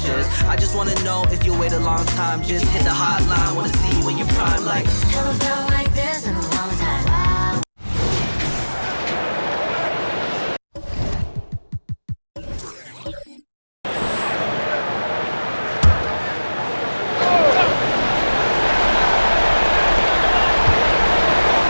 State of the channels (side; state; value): both; inverted; correlation -1.00